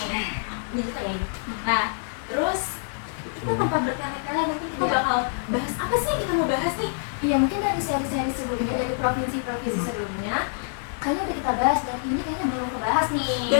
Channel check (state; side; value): silent; right; 61 dB below the other